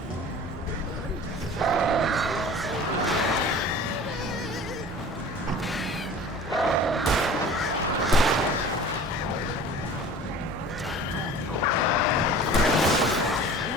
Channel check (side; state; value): both; normal; correlation 0.42